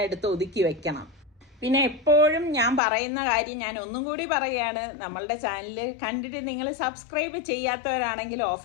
എടുത്ത് ഒതുക്കി വെക്കണം. പിന്നെ എപ്പോഴും ഞാൻ പറയുന്ന കാര്യം ഞാൻ ഒന്നും കൂടി പറയുകയാണ്, നമ്മളുടെ ചാനൽ കണ്ടിട്ട് നിങ്ങൾ സബ്സ്ക്രൈബ് ചെയ്യാത്തവരാണെങ്കിൽ ഓഫ്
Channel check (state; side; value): drops out; right; at 2.8 s